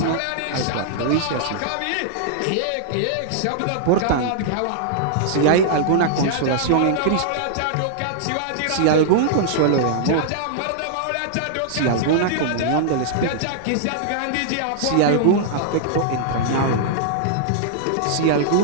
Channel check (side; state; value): both; different; correlation -0.01